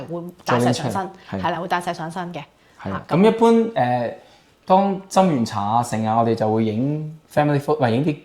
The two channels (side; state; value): both; identical; correlation 1.00